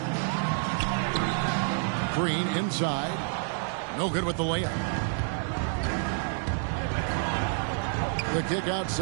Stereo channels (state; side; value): silent; left; 59 dB below the other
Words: Green inside. No good with the layup. The kick